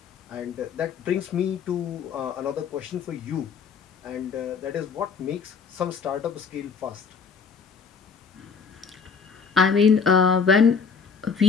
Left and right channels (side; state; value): right; quieter; 5.8 dB